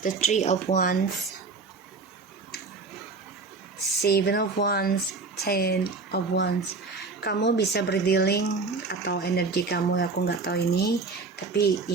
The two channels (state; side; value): quieter; left; 4.1 dB